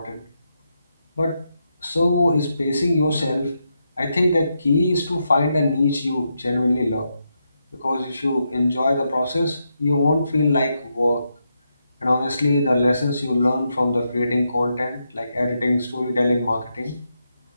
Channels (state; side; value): inverted; both; correlation -0.83